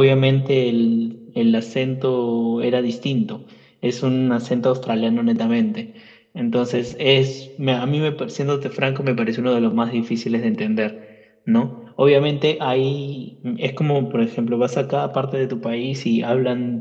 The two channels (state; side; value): identical; both; correlation 1.00